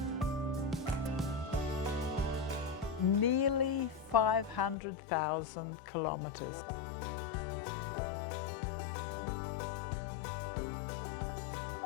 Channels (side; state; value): right; drops out; at 4.8 s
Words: Nearly 500,000 kilometres.